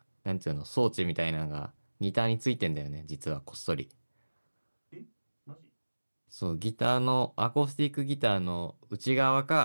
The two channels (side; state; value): both; inverted; correlation -1.00